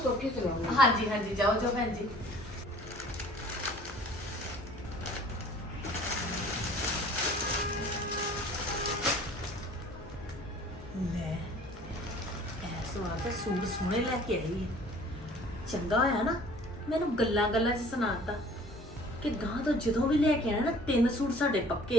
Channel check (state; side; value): normal; both; correlation 0.50